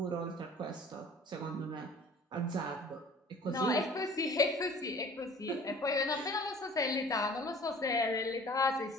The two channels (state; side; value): normal; both; correlation 0.48